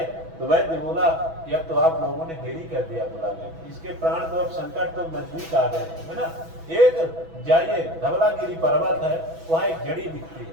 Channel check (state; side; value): late; left; 6.1 ms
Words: तो वैद्य बोला कि अब तो आप लोगों ने देरी कर दिया बुलाने, इसके प्राण तो अब संकट तो नजदीक आ गए, है ना। एक जाइए, धवलागिरी पर्वत है, वहाँ एक जड़ी दिखती